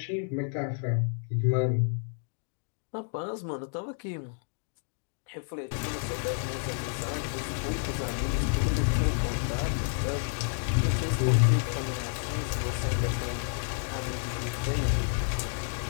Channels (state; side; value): silent; right; 58 dB below the other